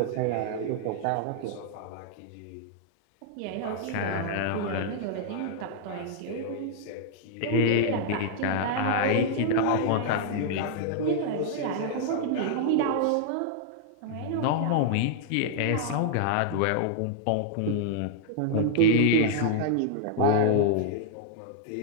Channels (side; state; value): both; different; correlation -0.01